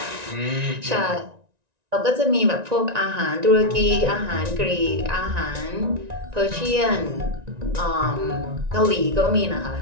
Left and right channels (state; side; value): late; left; 1.9 ms